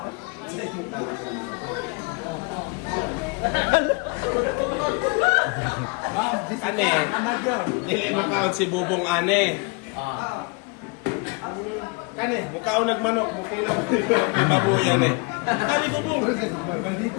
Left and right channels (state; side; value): quieter; right; 29.7 dB